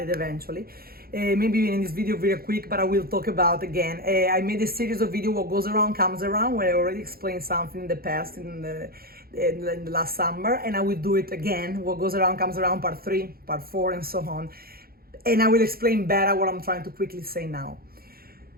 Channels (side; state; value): left; late; 0.44 ms